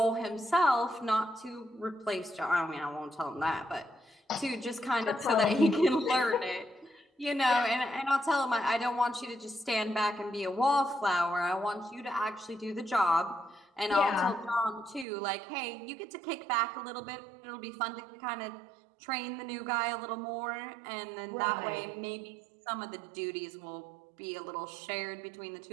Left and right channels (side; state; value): left; drops out; at 15.1 s